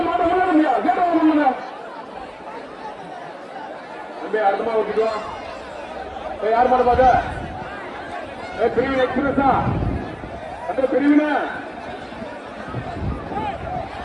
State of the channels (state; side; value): identical; both; correlation 1.00